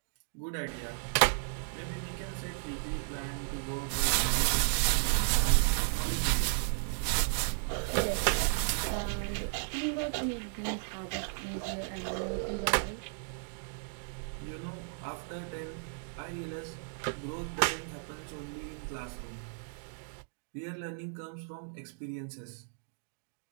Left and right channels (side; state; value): left; silent; digital silence